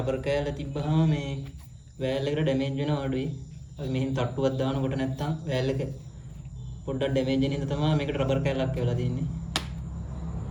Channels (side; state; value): both; identical; correlation 1.00